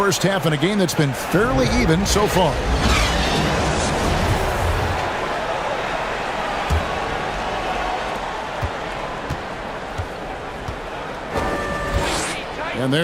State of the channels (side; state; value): both; identical; correlation 1.00